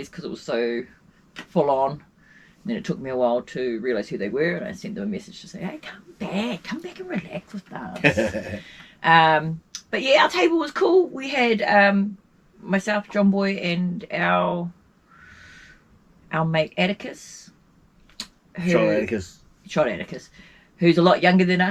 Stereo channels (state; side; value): identical; both; correlation 1.00